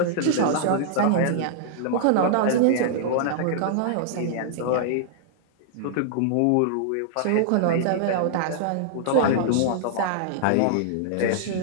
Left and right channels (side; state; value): both; different; correlation -0.01